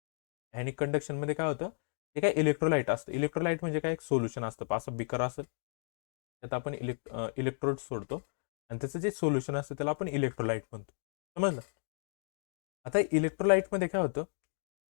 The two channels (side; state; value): right; silent; digital silence